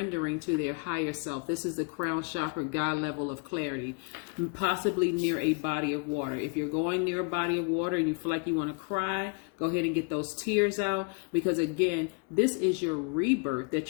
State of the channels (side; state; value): right; quieter; 34.7 dB